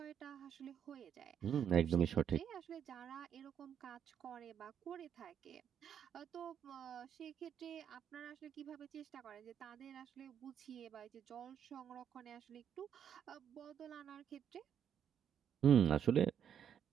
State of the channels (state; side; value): quieter; left; 8.7 dB